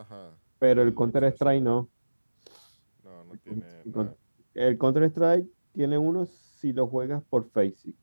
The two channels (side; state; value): both; inverted; correlation -1.00